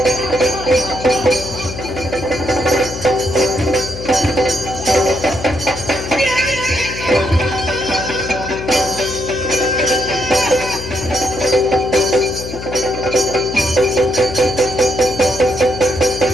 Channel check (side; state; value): left; noise; hum, 9 dB below the sound